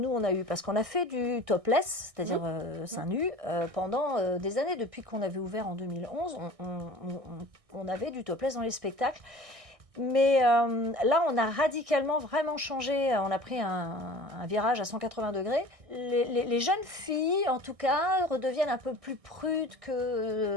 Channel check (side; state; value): left; late; 1.6 ms